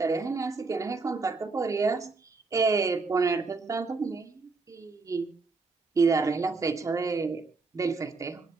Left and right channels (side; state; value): left; quieter; 4.1 dB